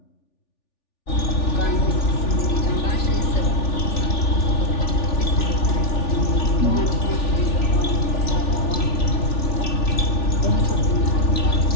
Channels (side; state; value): right; late; 3.4 ms